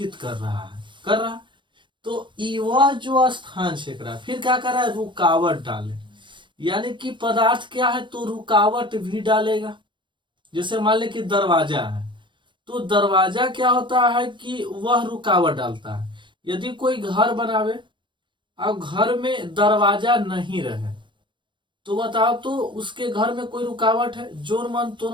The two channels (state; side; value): late; left; 0.23 ms